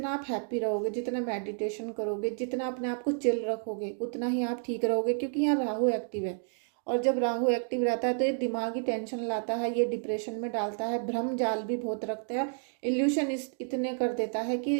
आप हैप्पी रहोगे, जितना मेडिटेशन करोगे, जितना अपने आप को चिल रखोगे, उतना ही आप ठीक रहोगे। क्योंकि यहाँ राहु एक्टिव है, और जब राहु एक्टिव रहता है तो ये दिमागी टेंशन लाता है, ये डिप्रेशन में डालता है, भ्रम जाल भी बहुत रखता है, इल्यूशन इतने कर देता है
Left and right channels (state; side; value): silent; left; 57 dB below the other